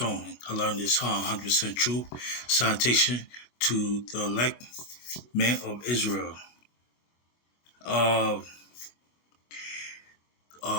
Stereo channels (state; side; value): late; right; 24 ms